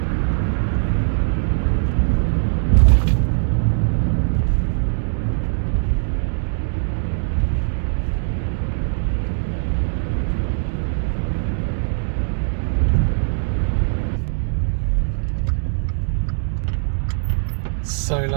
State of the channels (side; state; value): left; silent; digital silence